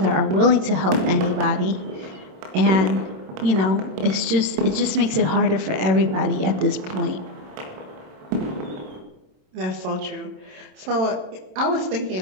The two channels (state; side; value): late; left; 27 ms